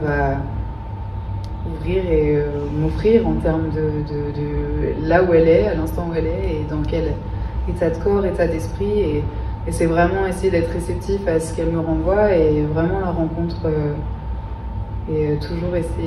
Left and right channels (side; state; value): both; identical; correlation 1.00